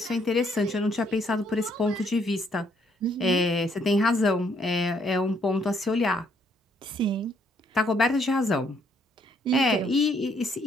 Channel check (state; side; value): normal; both; correlation 0.69